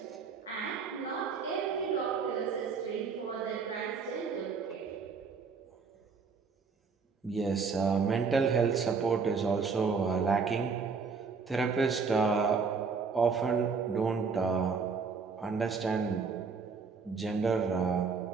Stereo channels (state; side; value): quieter; left; 5.2 dB